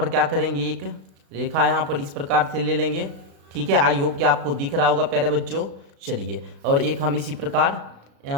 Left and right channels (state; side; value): late; left; 36 ms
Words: क्या करेंगे, एक रेखा यहाँ पर इस प्रकार से ले लेंगे, ठीक है। आई होप कि आपको दिख रहा होगा प्यारे बच्चों। चलिए और एक हम इसी प्रकार